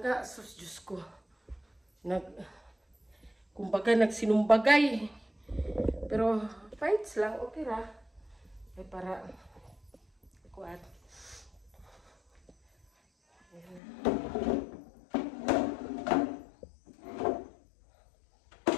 Sus, Diyos ko. Kumbaga nagsinumbagay. Pero fights lang, okay ra. Ay para kuat.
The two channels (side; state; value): right; drops out; at 13.8 s